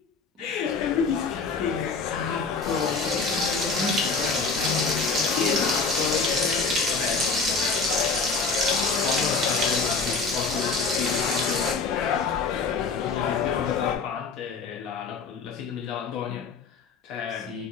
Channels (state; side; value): quieter; right; 4.5 dB